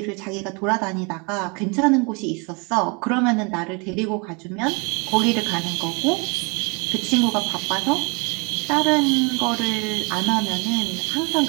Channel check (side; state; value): left; quieter; 31.4 dB